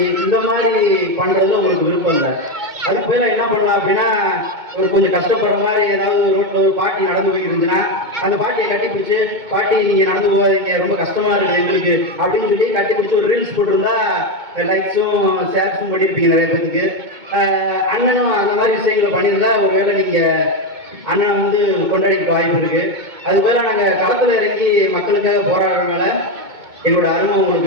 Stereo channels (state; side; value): late; left; 2.2 ms